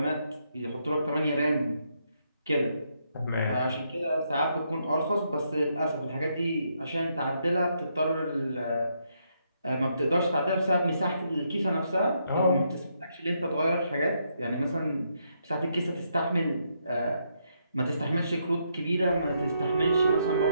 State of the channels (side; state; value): both; inverted; correlation -0.77